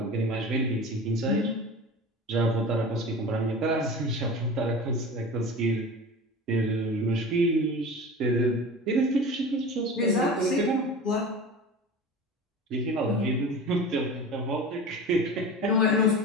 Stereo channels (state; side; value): normal; both; correlation 0.33